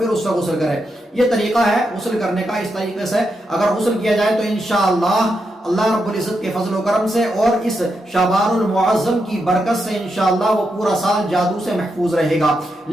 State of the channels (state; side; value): normal; both; correlation 0.84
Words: اس سے غسل کرے۔ یہ طریقہ ہے غسل کرنے کا۔ اس طریقے سے اگر غسل کیا جائے تو انشاءاللہ اللہ رب العزت کے فضل و کرم سے اور اس شعبان المعظم کی برکت سے انشاءاللہ وہ پورا سال جادو سے محفوظ رہے گا۔